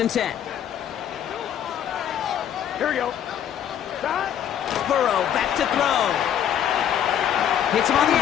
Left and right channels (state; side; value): quieter; right; 9.8 dB